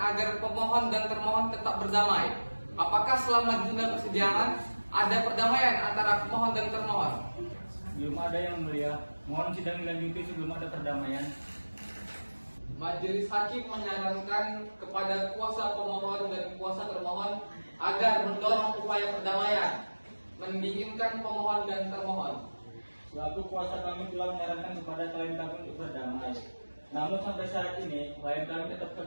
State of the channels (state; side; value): inverted; both; correlation -1.00